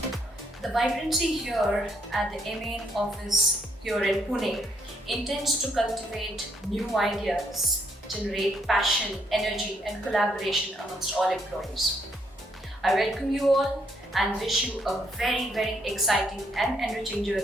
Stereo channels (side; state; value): both; normal; correlation 0.72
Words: The vibrancy here at the MA office here in Pune intends to cultivate new ideas, generate passion, energy and collaboration amongst all employees. I welcome you all and wish you a very, very exciting and enriching